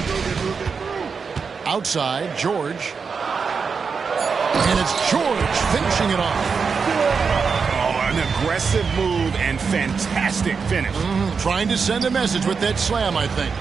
Outside, George. And it's George finishing it off. Oh, an aggressive move and fantastic finish. Trying to send a message with that slam, I think.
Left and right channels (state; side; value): quieter; left; 5.5 dB